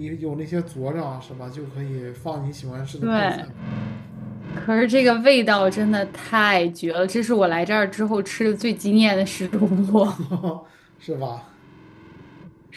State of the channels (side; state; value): both; identical; correlation 1.00